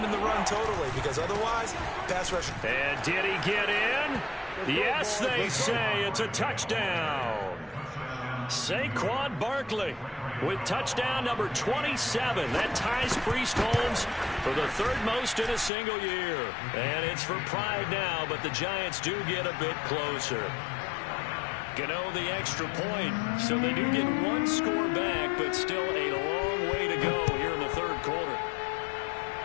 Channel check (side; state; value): right; drops out; at 15.7 s